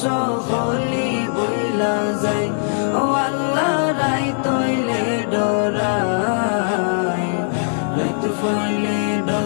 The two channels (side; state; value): right; silent; digital silence